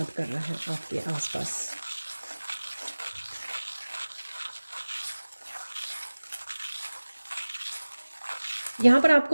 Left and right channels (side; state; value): both; inverted; correlation -1.00